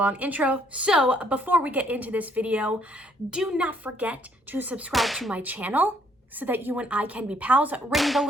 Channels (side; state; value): both; normal; correlation 0.67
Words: intro, so before we get into this video, do not forget to subscribe to my channel so that you and I can be pals. Ring the